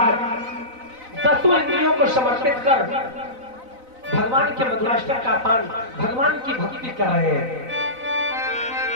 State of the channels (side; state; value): left; late; 4.0 ms